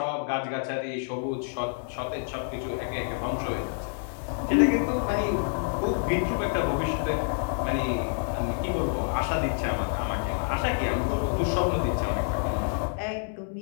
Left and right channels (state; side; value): silent; right; 59 dB below the other